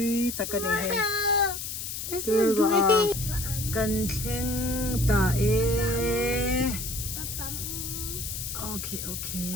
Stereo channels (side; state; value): left; noise; hiss, 6 dB below the sound